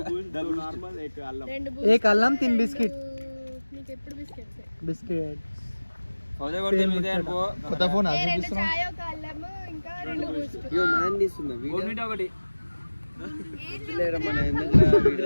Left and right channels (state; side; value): inverted; both; correlation -1.00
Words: एक అల్లం 3 బిస్కెట్ బిస్కెట్. కొత్త ఫోన్ ఒకటి